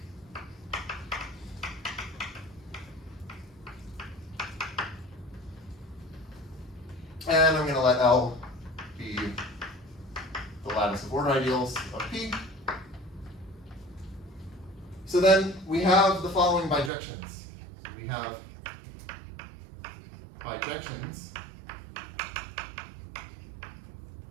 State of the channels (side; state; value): left; drops out; at 16.9 s